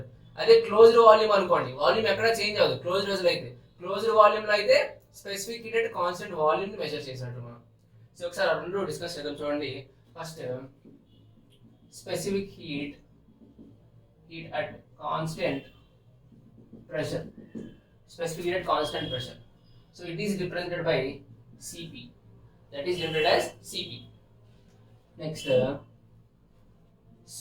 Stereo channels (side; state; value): both; identical; correlation 1.00